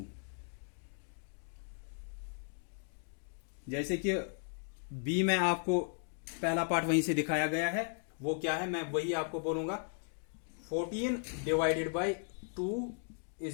जैसे कि बी में आपको पहला पार्ट वहीं से दिखाया गया है, वो क्या है मैं वही आपको बोलूंगा। 14 divided by 2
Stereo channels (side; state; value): right; silent; 54 dB below the other